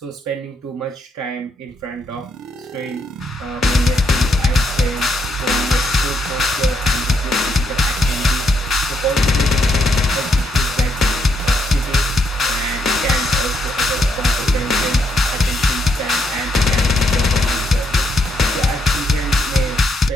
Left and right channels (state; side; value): normal; both; correlation 0.76